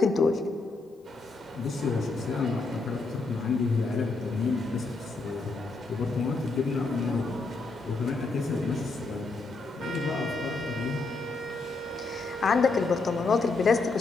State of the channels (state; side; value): quieter; right; 3.7 dB